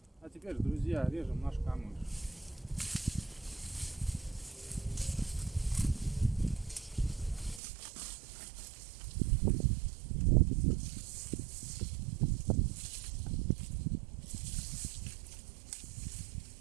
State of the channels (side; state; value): left; drops out; at 7.6 s